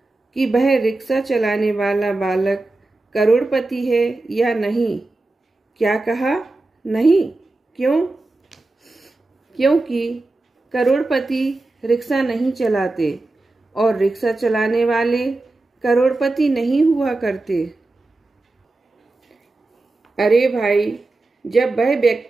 कि वह रिक्शा चलाने वाला बालक करोड़पति है या नहीं? क्या कहा? नहीं। क्यों? क्योंकि करोड़पति रिक्शा नहीं चलाते और रिक्शा चलाने वाले करोड़पति नहीं हुआ करते। अरे भाई, जब वह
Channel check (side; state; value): left; quieter; 3.0 dB